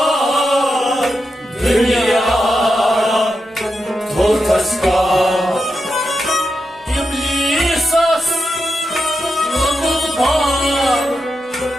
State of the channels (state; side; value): normal; both; correlation 0.87